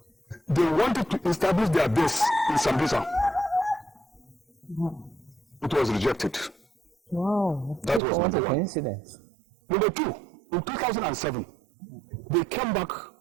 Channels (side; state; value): left; drops out; at 8.0 s